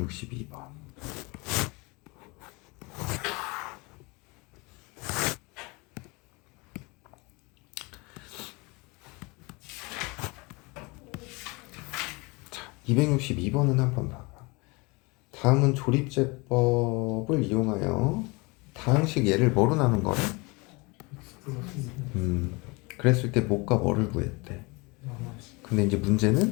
자, 262번은 한번 봐봐. 다음은 조립제법을 이용하여 다항식 얘를 뭐로 나눈 거래? X 플러스 그랬을 때 뭐가 뭐를 구했대? 마이너스 근데 이제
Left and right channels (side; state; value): right; quieter; 27.0 dB